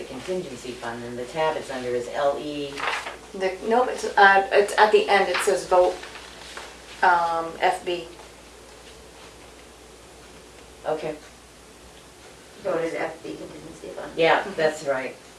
contingency fund, and the tab it's under is LE. Nope, it's at the end, it says vote, FB. Okay, Voted FB contingency fund. yeah, that's right.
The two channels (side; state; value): both; identical; correlation 1.00